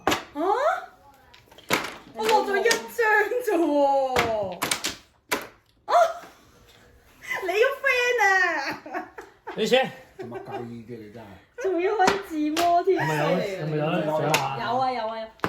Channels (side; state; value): both; identical; correlation 1.00